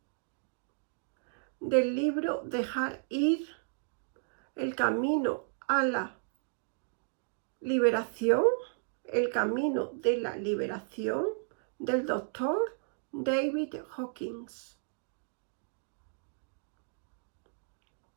del libro Dejar ir, el camino a la liberación, el camino de la liberación del doctor David Hawkins.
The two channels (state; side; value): silent; left; digital silence